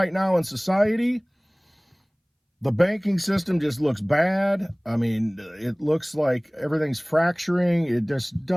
now in society. The banking system just looks bad. It looks like everything's fracturing. It just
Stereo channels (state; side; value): identical; both; correlation 1.00